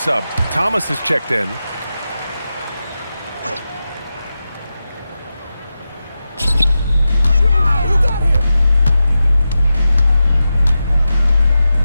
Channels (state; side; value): inverted; both; correlation -0.91